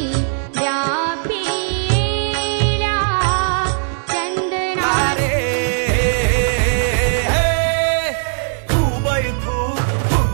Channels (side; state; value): left; silent; digital silence